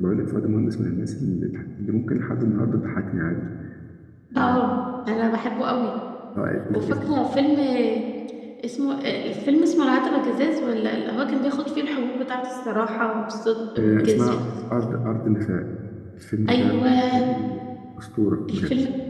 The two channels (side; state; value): both; identical; correlation 1.00